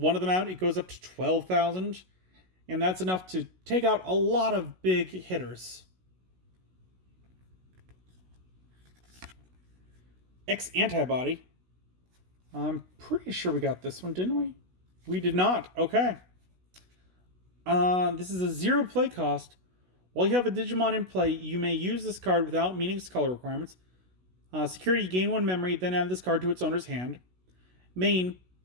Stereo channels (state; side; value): late; left; 16 ms